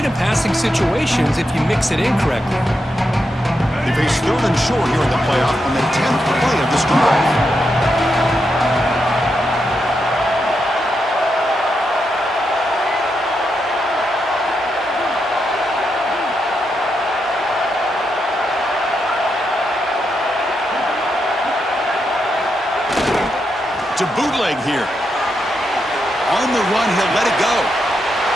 in passing situations, if you mix it in correctly. They face 3rd and short here in the playoff on the 10th play of this drive. To bootleg here. On the run, he'll let it go.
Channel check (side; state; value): both; normal; correlation 0.84